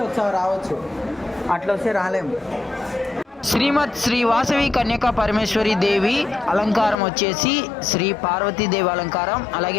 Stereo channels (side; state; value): right; drops out; at 7.0 s